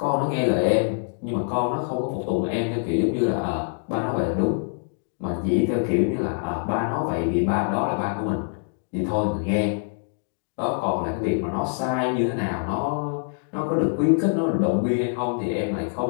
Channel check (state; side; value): silent; right; digital silence